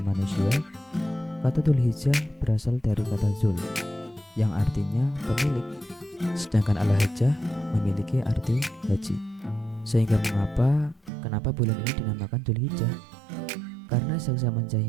Manusia, kata Dzulhijjah berasal dari kata Zul, yang artinya pemilik, sedangkan Al-Hajjah memiliki arti haji. Sehingga kenapa bulan ini dinamakan Dzulhijjah? Karena sejak zaman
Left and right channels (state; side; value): drops out; left; at 11.1 s